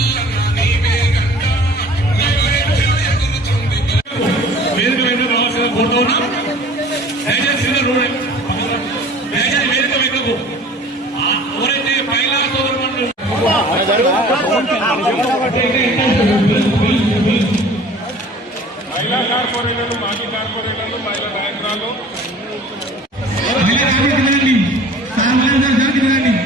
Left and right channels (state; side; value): normal; both; correlation 0.47